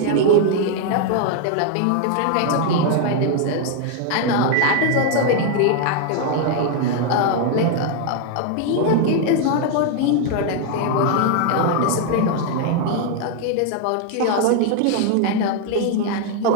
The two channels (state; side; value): different; both; correlation 0.00